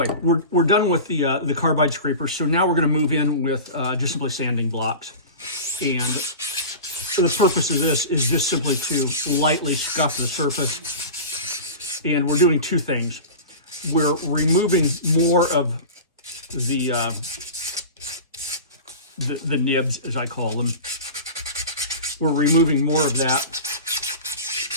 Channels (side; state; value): both; inverted; correlation -0.31